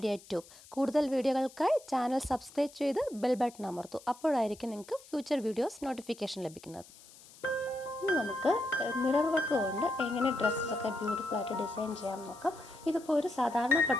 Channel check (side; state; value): left; noise; hiss, 22 dB below the sound